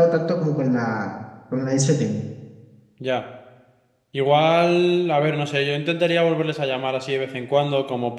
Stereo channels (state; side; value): identical; both; correlation 1.00